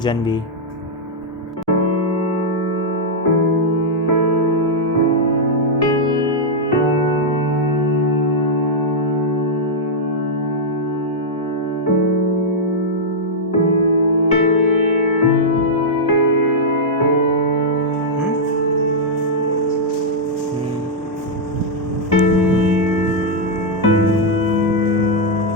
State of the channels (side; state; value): both; normal; correlation -0.06